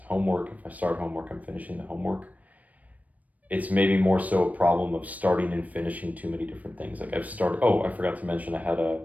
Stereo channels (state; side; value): late; left; 0.072 ms